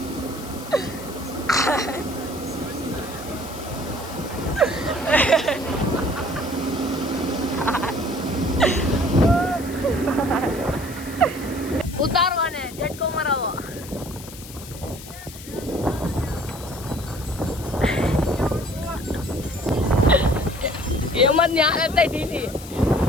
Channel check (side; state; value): left; noise; hiss, 15 dB below the sound